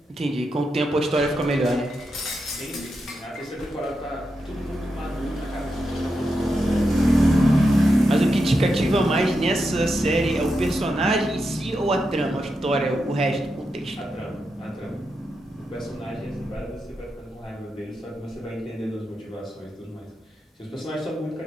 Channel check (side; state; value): both; normal; correlation 0.86